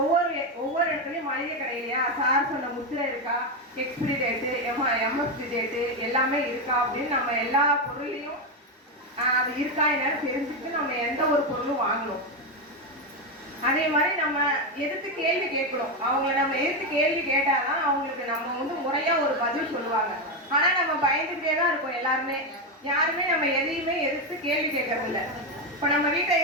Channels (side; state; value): both; normal; correlation 0.09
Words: ஒவ்வொரு இடத்துலயும் மளிகை கடையிலையா சார் சொன்ன முத்திரை இருக்கா, எக்ஸ்பிரி டேட்டு, எம்எஸ்பி டேட்டு எல்லாமே இருக்கா அப்படின்னு நம்ம எல்லா பொருளையும் அது இருக்கா என்னன்னு தெரிஞ்சுட்டு நம்ம எந்த ஒரு பொருளும் வாங்கணும். அதே மாதிரி நம்ம எதிர்த்து கேள்வி கேட்கணும். அவங்கள நம்ம எதிர்த்து கேள்வி கேட்டாதான் அவங்களுக்கு நம்ம வந்து முறையா ஒரு பதில் சொல்லுவாங்க. ஆனா நம்ம பயந்துகிட்டே தான் இருக்கோம் எல்லாருமே. யாருமே நம்ம எதையுமே எதிர்த்து கேள்வி கேட்கறது இல்லை. இப்போ நம்ம வீட்டை